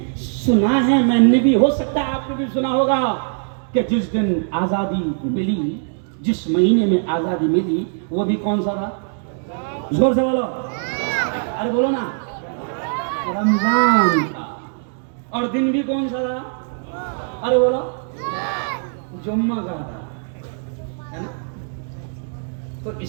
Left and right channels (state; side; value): silent; left; 65 dB below the other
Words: सुना है, मैंने भी, हो सकता है आपने भी सुना होगा कि जिस दिन आजादी मिली, जिस महीने में आजादी मिली, वो भी कौन सा था? जोर से बोलो, अरे बोलो ना, रमजान था। और दिन भी कौन सा था? अरे बोलो, जुम्मा का था, है ना? तो